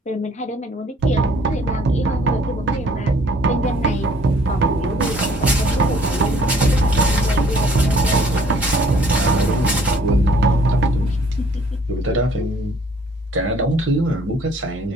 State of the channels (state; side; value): normal; both; correlation 0.59